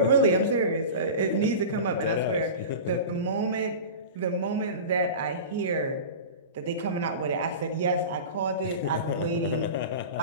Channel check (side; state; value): both; inverted; correlation -0.31